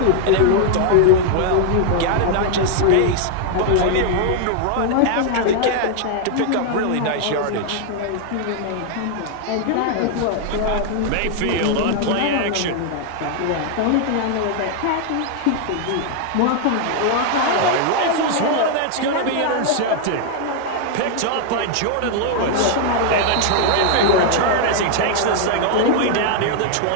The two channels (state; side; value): different; both; correlation 0.00